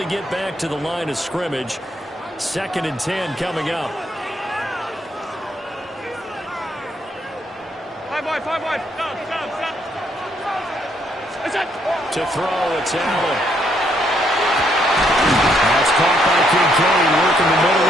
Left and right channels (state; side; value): normal; both; correlation 0.72